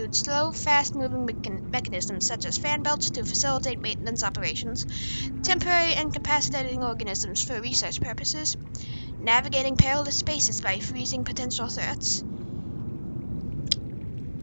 slow, fast-moving mechanisms such as fan belts to facilitate maintenance operations, temporary incapacitating organisms for research purposes, navigating perilous spaces by freezing potential threats.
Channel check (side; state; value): both; inverted; correlation -1.00